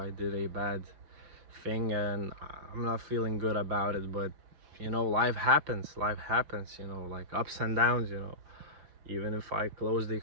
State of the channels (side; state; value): left; late; 5.6 ms